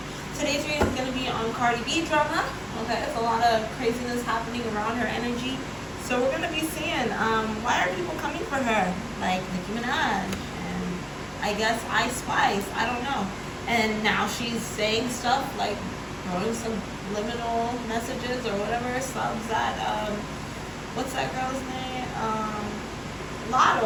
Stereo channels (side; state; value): both; identical; correlation 1.00